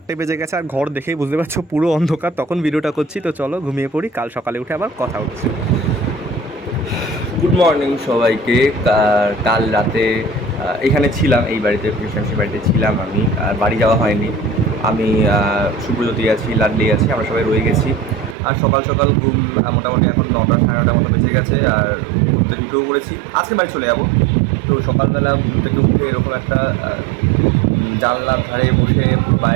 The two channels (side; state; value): left; drops out; at 18.4 s